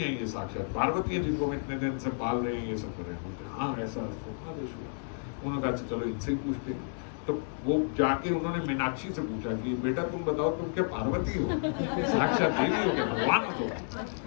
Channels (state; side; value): silent; right; digital silence